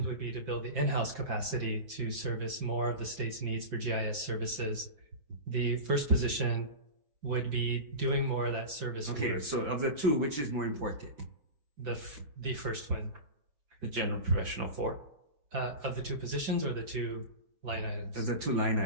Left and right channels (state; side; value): late; left; 6.2 ms